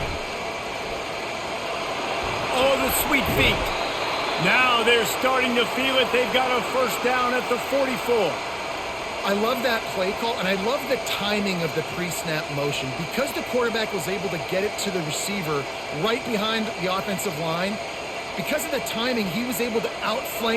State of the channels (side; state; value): both; identical; correlation 1.00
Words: Oh, the sweet feet. Now they're starting to feel it. They've got a first down at the 44. I love that play call, and I love the timing of the pre-snap motion. Because the quarterback was able to get it to the receiver right behind the offensive line, because of the timing, he was able to